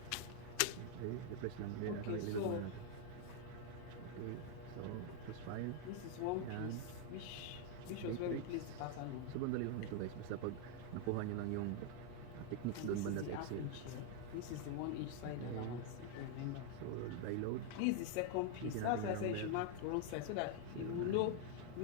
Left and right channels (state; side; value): different; both; correlation 0.00